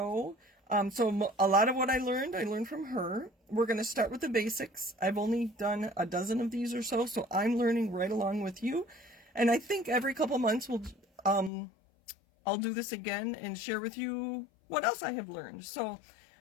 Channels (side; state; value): right; drops out; at 11.5 s